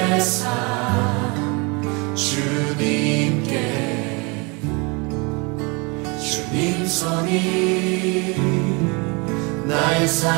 삶 주님께. 주님 손이 나의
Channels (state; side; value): quieter; left; 29.6 dB